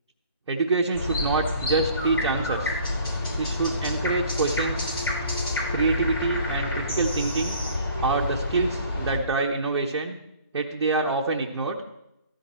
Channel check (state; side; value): inverted; both; correlation -0.52